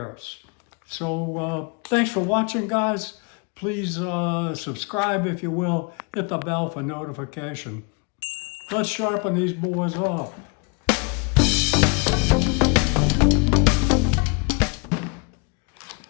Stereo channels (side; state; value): right; quieter; 33.1 dB